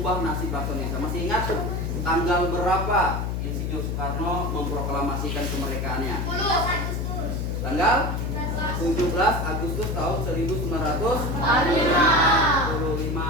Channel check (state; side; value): noise; left; hum, 1 dB below the sound